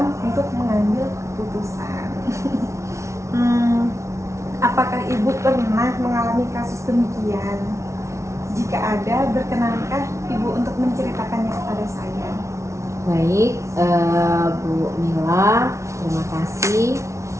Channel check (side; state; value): left; late; 0.14 ms